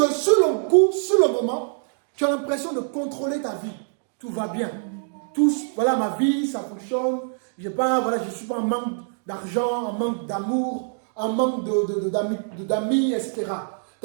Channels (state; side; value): silent; left; digital silence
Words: sur le coup, sur le moment, tu as l'impression de contrôler ta vie. Tout va bien. Tout, voilà ma vie, ça fonctionne. Je ne suis pas en manque d'argent, en manque d'amour, en manque d'amis, etc.